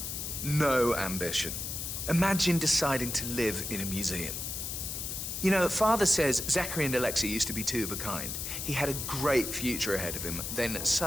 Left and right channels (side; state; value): left; noise; hiss, 4 dB below the sound